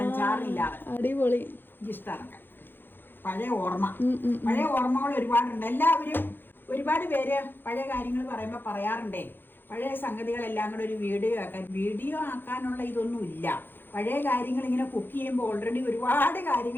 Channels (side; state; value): right; late; 0.099 ms